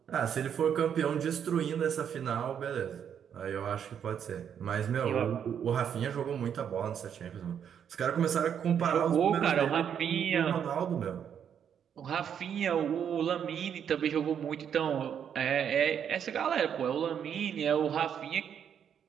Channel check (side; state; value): left; quieter; 8.4 dB